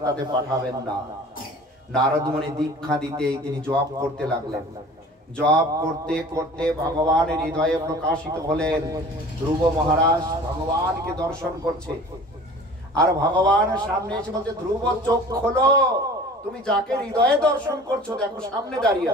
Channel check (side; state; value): both; normal; correlation 0.44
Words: পাঠাবেন না। নারদ মুনি দীক্ষা দিতেই তিনি জপ করতে লাগলেন। জপ করতে করতে ভগবানের হৃদয়ে প্রকাশিত হলেন। ধ্রুব মহারাজ ভগবানকে দর্শন করছে, আর ভগবান সামনে এসে বলছে, ধ্রুব চোখ খোলো, তুমি যাকে হৃদয়ে দর্শন করছো দেখো সামনে দাঁড়িয়ে